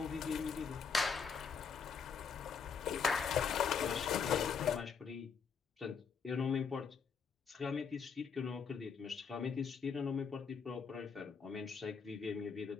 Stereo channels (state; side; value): quieter; right; 6.0 dB